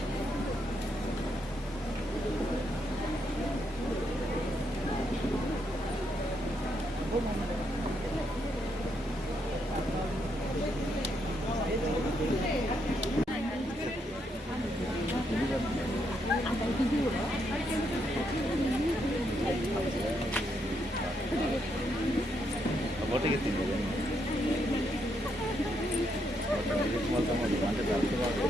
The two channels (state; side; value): normal; both; correlation 0.77